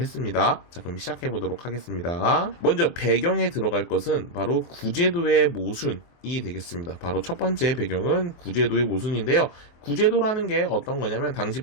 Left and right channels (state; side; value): late; right; 23 ms